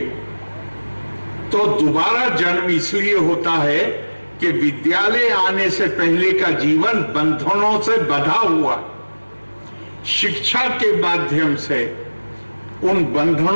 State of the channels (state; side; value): inverted; both; correlation -1.00